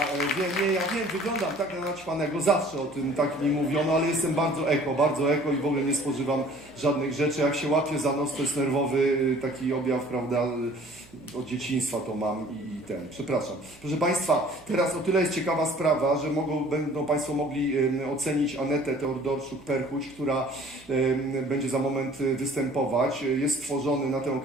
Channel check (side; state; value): right; noise; hum, 25 dB below the sound